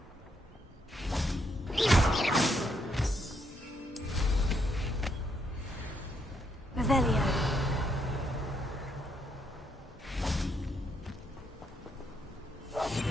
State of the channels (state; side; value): normal; both; correlation 0.75